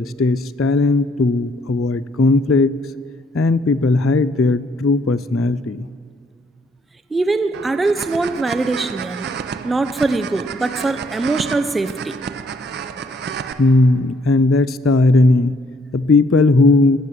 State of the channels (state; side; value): normal; both; correlation 0.67